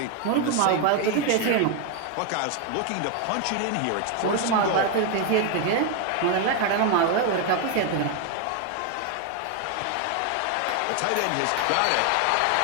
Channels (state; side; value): different; both; correlation 0.01